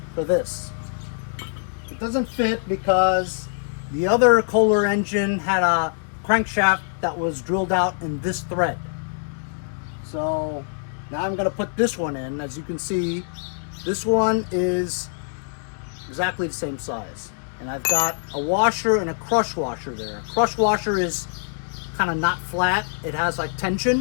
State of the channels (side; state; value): right; silent; digital silence